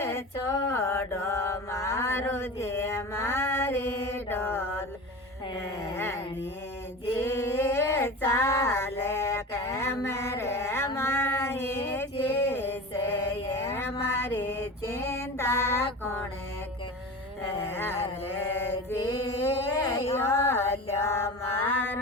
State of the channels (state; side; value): normal; both; correlation 0.31